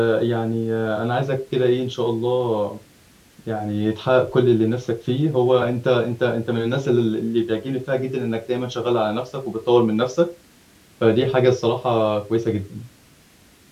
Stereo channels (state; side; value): identical; both; correlation 1.00